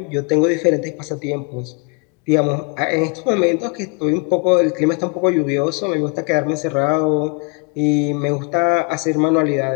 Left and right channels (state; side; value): quieter; right; 32.5 dB